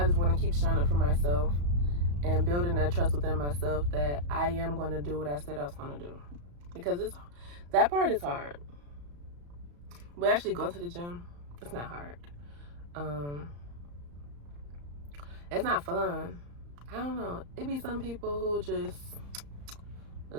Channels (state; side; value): late; left; 35 ms